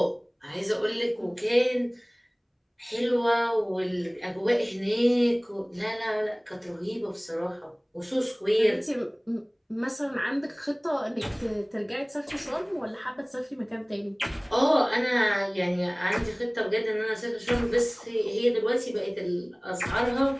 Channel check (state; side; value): identical; both; correlation 1.00